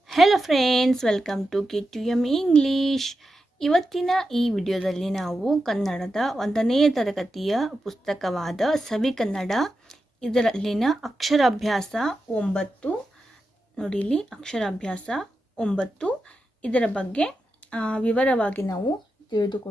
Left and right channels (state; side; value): normal; both; correlation 0.89